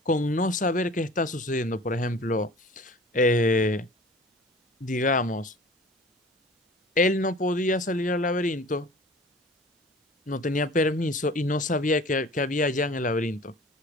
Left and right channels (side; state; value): both; normal; correlation 0.44